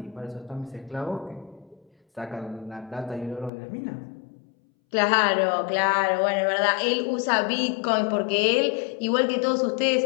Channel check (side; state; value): right; drops out; at 3.5 s